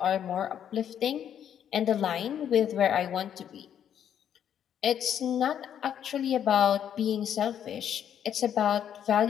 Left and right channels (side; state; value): right; quieter; 9.4 dB